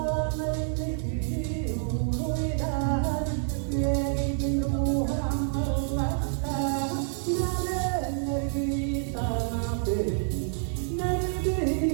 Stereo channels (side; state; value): left; silent; digital silence